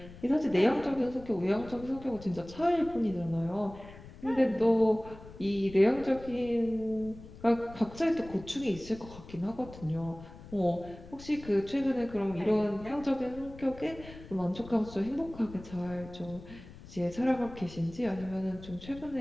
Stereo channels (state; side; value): noise; left; rumble, 17 dB below the sound